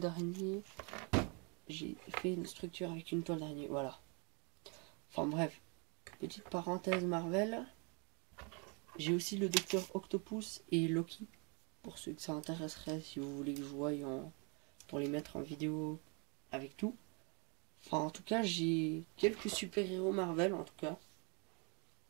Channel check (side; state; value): left; quieter; 34.7 dB